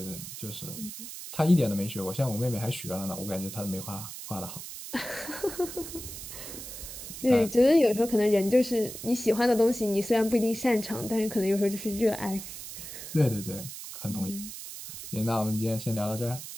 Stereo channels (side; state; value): right; noise; hiss, 10 dB below the sound